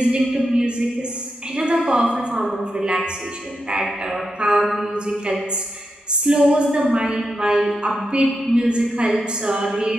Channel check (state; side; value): normal; both; correlation 0.87